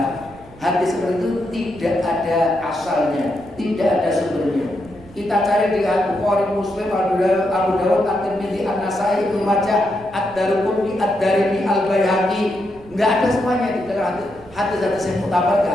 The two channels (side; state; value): right; noise; rumble, 22 dB below the sound